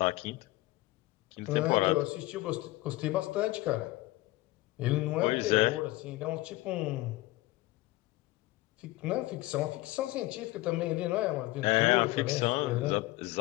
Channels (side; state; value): right; quieter; 18.7 dB